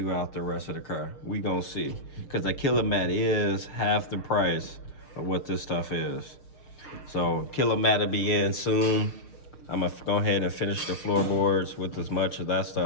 the rest of the car. We gonna see. Cause the Kilomat is half the price of what this stuff is. So Kilomat will be in soon. I'm gonna go ahead and finish the floorboards with as much of that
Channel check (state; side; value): late; right; 6.6 ms